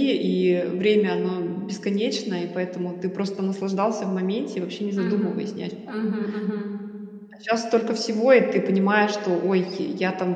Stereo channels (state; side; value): identical; both; correlation 1.00